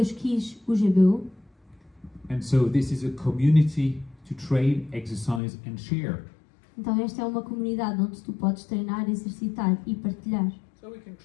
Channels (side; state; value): right; drops out; at 5.4 s